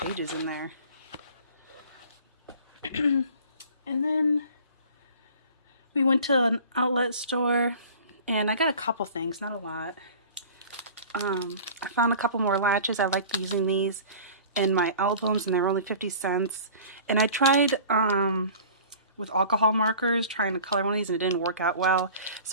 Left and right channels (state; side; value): inverted; both; correlation -0.43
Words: in there. And then we went to an outlet store and I got a couple things, not a lot. I found a couple more latches. I like using these in my albums and they're only 50 cents. And I tried with alcohol markers trying to color one of these and it didn't work out well.